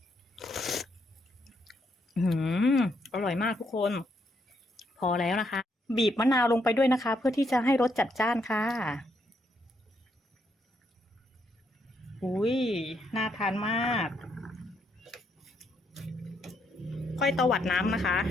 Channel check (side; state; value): both; normal; correlation 0.75